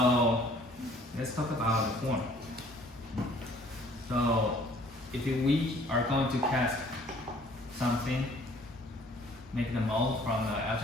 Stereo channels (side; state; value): both; normal; correlation 0.56